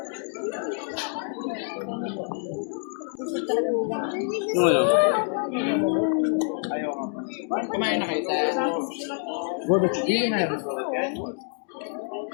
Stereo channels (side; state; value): right; silent; 58 dB below the other